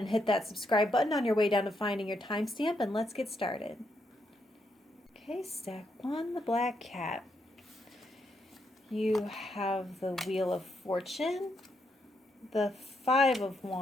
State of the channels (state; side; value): normal; both; correlation 0.79